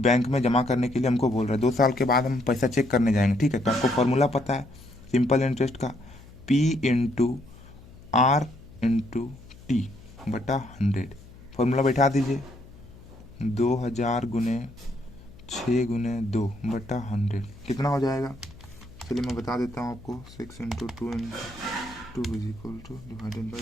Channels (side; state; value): left; noise; hum, 20 dB below the sound